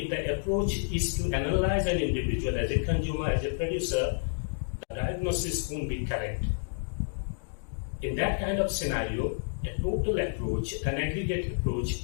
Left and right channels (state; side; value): silent; right; digital silence